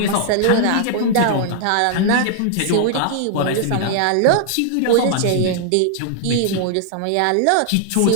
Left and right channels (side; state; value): both; different; correlation 0.00